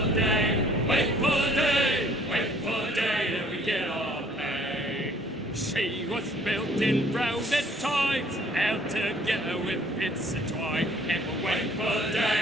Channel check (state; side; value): normal; both; correlation 0.58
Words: She was built in browsed times, out together with bits of twine. And we'll wait for